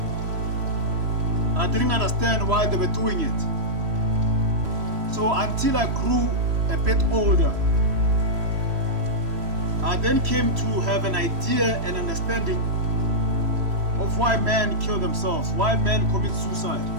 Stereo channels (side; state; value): left; late; 3.0 ms